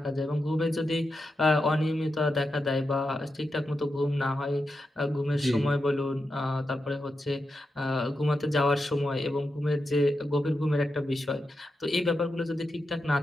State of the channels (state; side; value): normal; both; correlation 0.88